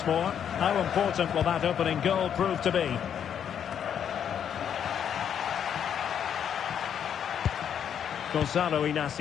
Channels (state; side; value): quieter; right; 8.6 dB